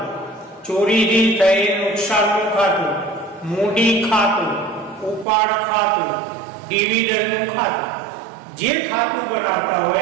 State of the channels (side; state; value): left; drops out; at 5.2 s